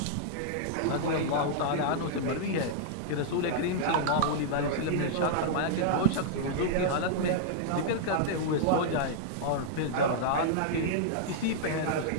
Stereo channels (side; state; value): both; different; correlation -0.02